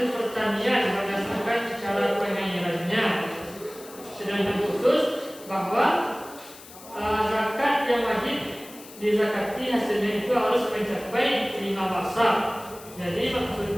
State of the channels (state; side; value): noise; left; hiss, 18 dB below the sound